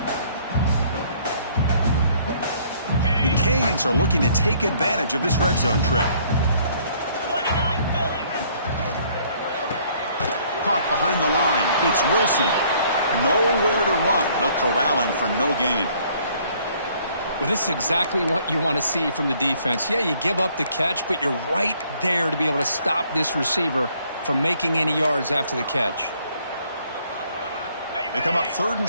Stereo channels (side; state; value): both; inverted; correlation -0.62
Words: The Canes are looking to take advantage of this red zone trip. Caught behind the line. It's Wilson. Nowhere to run. They'll corral him for no gain. Well, this is exactly what you want to see from the defense. Yeah, you give up the catch, but you're right there to be able to stop this receiver from making any yards after the catch. They come up 3rd